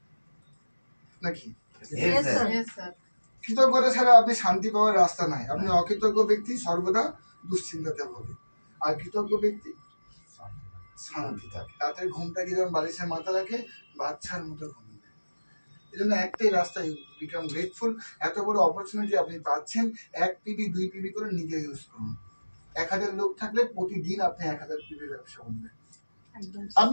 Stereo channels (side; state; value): both; inverted; correlation -1.00